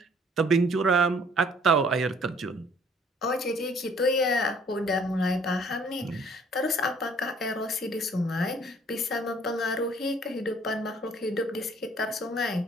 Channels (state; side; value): normal; both; correlation 0.58